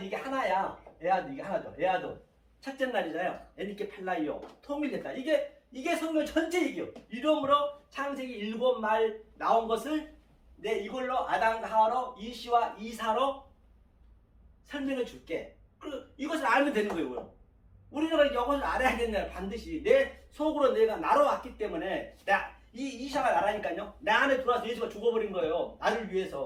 이게 하나야. 에아드 이게 하나죠. 에아드 첫째 날이잖아요. 에니케 팔라이오 통일됐다. 이게 성경 전체 얘기예요. 이름으로 창세기 7말 나온 것을 내 이걸로 아담과 하와로 이시와 이사로 설명해 줄게. 그리고 이것을 알면 되는 거예요. 우리가 이것을 알아야겠네. 반드시 내 속으로 내가 나로 왔기 때문에 이샤가 나라니까요. 내 안에 들어와서 예수가 죽어버린 거예요. 나를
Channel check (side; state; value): both; identical; correlation 1.00